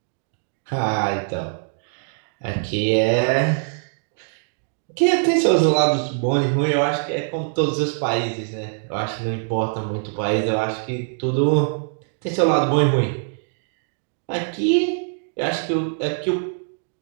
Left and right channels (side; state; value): left; silent; digital silence